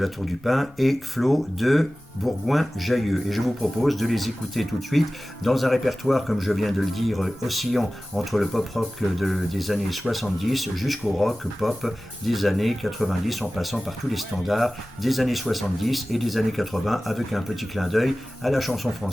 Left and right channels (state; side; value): normal; both; correlation 0.97